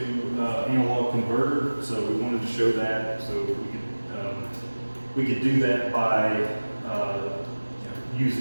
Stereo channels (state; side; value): inverted; both; correlation -1.00